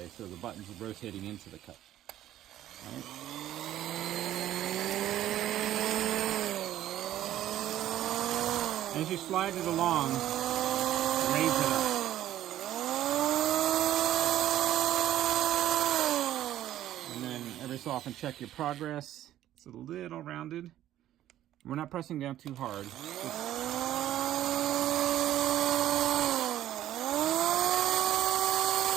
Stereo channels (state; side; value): quieter; left; 12.8 dB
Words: so the button's rotating into the cut. Right? As you slide it along, raise it up. And then every so often check your progress. It's a little rounded. We're not pressing down too hard.